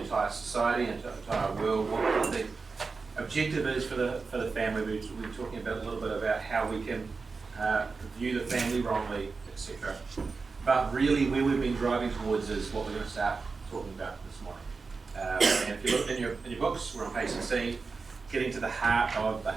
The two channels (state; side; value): quieter; left; 4.4 dB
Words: entire society and entire world. What the objective is for the family. We're talking about a little bit about how we can view the family wrongly, etc. But really, where we've been driving towards is what we're going to start talking about this morning. And if you look in your books, we're on page 16, getting to the heart of